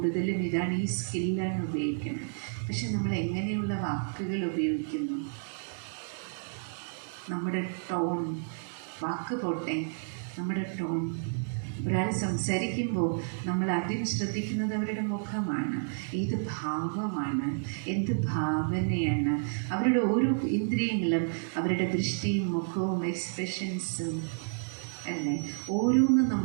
ഇതാണ്, ഈ സ്കില്ലാണ് ഉപയോഗിക്കുന്നത്. പക്ഷെ നമ്മൾ എങ്ങനെയുള്ള വാക്കുകൾ ഉപയോഗിക്കുന്നു? നമ്മുടെ ടോൺ, വാക്ക് പോട്ടെ, നമ്മുടെ ടോൺ. ഒരാൾ സംസാരിക്കുമ്പോൾ നമ്മൾ ആദ്യം ശ്രദ്ധിക്കുന്നത് അവരുടെ മുഖമാണ്, ഏത് ഭാവമാണ്, എന്ത് ഭാവനയാണ്. അവരുടെ ഓരോ ഇന്ദ്രിയങ്ങളും, അവരുടെ ദൃഷ്ടിയും മുഖവും എക്സ്പ്രഷൻസും അല്ലേ, ഓരോന്നും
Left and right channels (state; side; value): silent; left; digital silence